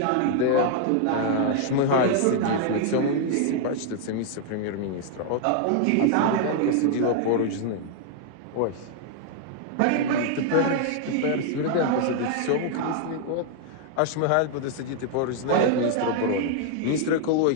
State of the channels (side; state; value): both; different; correlation 0.00